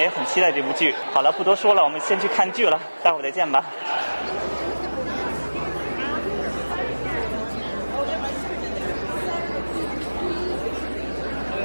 很期待这部剧。好了，不多说了，我们先去看剧了，待会儿再见吧。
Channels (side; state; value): both; inverted; correlation -1.00